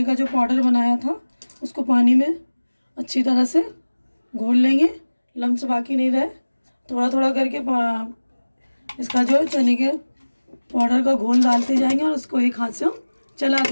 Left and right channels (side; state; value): both; inverted; correlation -1.00